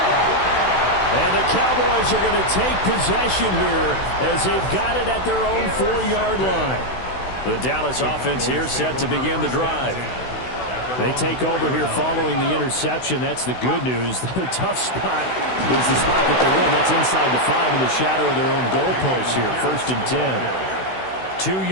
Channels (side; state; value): right; late; 16 ms